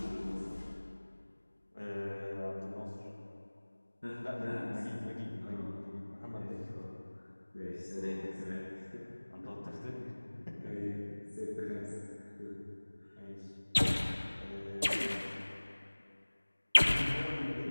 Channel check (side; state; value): both; inverted; correlation -1.00